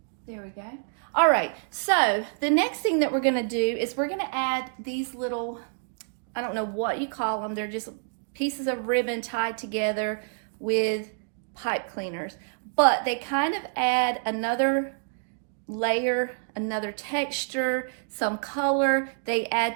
there we go. All right, so the next thing that we're gonna do is we're gonna add these little, I don't know what you call them, they're just pieces of ribbon tied together with pipe cleaners, but they kind of add another layer, another texture, some color. They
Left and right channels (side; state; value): left; silent; digital silence